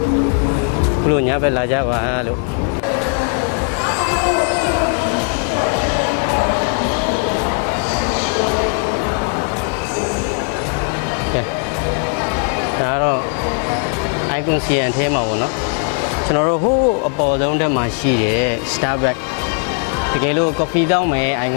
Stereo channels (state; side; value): quieter; right; 38.9 dB